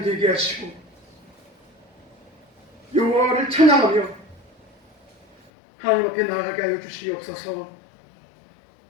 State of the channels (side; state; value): right; drops out; at 5.5 s